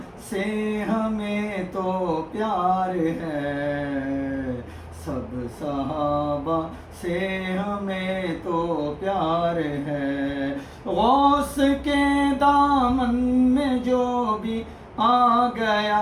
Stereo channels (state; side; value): identical; both; correlation 1.00